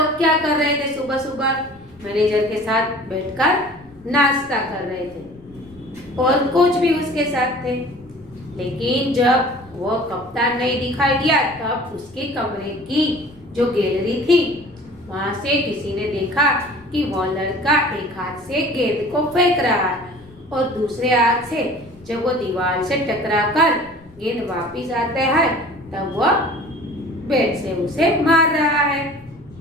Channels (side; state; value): left; noise; rumble, 25 dB below the sound